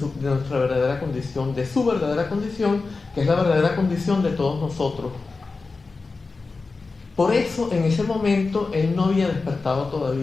nuestra verdadera condición, de su verdadera condición, que es la verdadera condición de todos nosotros. Por eso, en ese momento, él no había despertado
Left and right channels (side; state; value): right; quieter; 4.0 dB